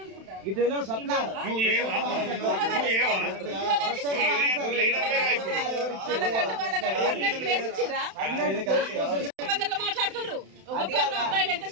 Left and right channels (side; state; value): left; late; 31 ms